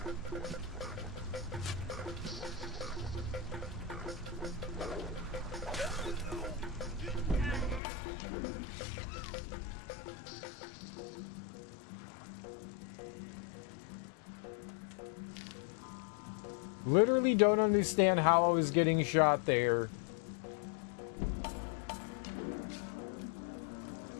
Literally don't understand how I was getting shot there.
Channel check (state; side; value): drops out; right; at 7.8 s